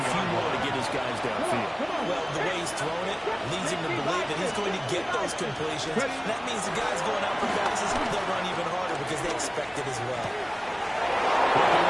few more to get his guys downfield. Well, the way he's throwing it leads him to believe that he's going to get those completions. That means the guys going out for passes, they'll run even harder because they expect it as well.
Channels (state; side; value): identical; both; correlation 1.00